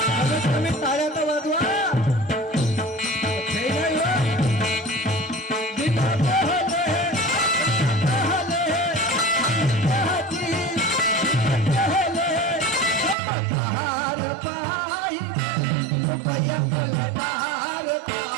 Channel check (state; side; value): drops out; left; at 13.2 s